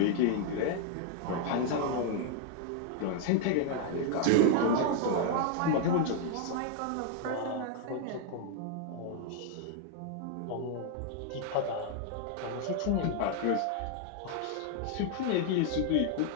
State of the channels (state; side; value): different; both; correlation 0.00